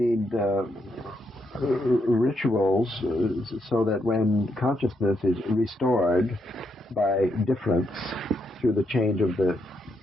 rituals so that when consciousness is restored by difference through the change of the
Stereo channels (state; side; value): normal; both; correlation 0.79